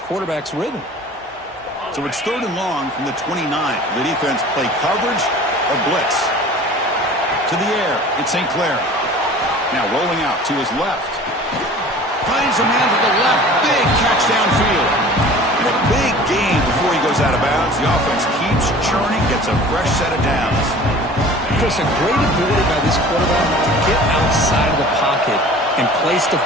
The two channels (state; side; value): normal; both; correlation 0.44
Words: rhythm. So it's third and long from the 29. The defense play coverage or blitz. To the air, it's St. Clair. Now rolling out to his left. Finds a man to the left. Big catch downfield. And a big gain before he goes out of bounds. The offense keeps churning, gets a fresh set of downs. Chris, a great ability by this quarterback to get outside of the pocket and place the